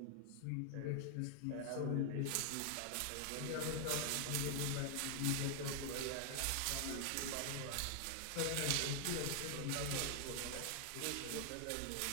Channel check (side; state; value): both; different; correlation 0.00